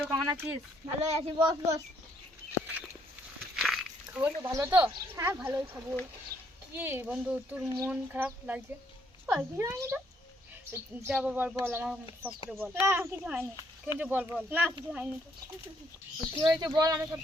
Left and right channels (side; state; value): both; normal; correlation 0.70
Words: কেমন আছিস? ভালোই আছি, বস বস। খবর তো ভালো তো? হ্যাঁ ভালোই খবর। কি বন্ধু, তোর মন খারাপ লাগছে? কিছু হয়নি তো। যা বল বল, আমার সব করে বল। না কিছু হয়নি। কিন্তু বল বল, না কিছু হয়নি তো। কি হয়েছে বল, আমি সব